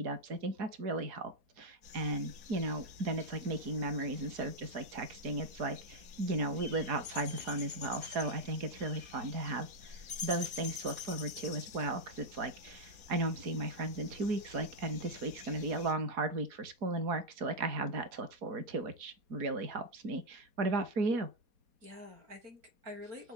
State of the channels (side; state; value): left; late; 4.2 ms